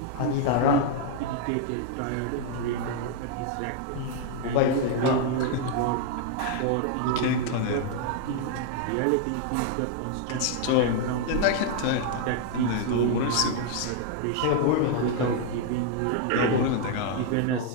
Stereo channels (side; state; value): both; different; correlation 0.00